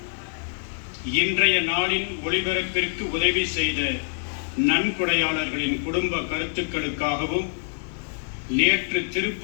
இன்றைய நாளின் ஒளிபரப்பிற்கு உதவி செய்த நன்கொடையாளர்களின் குடும்ப கருத்துக்களுக்காகவும் நேற்று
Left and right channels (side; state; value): right; silent; 62 dB below the other